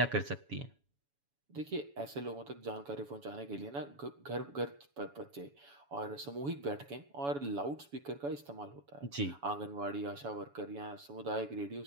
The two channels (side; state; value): left; late; 7.1 ms